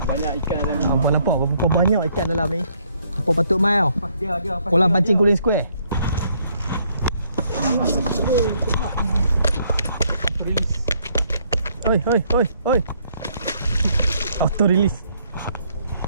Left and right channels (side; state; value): both; inverted; correlation -0.68